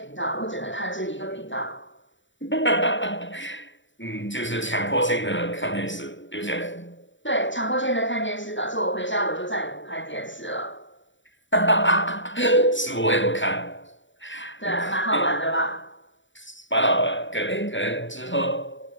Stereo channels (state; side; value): late; right; 0.55 ms